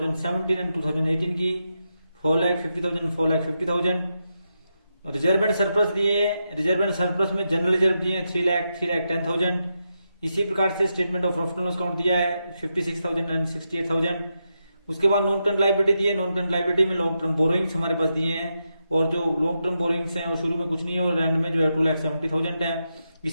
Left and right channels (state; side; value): inverted; both; correlation -0.86